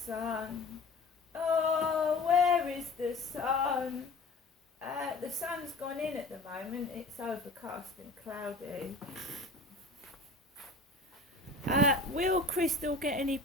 sun? Oh, where is the sun? The sun's gone in at the moment. It's overcast and cloudy. Will Crystal get any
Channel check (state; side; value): quieter; right; 3.2 dB